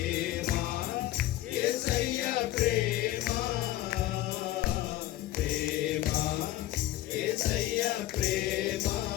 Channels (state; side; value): quieter; right; 15.1 dB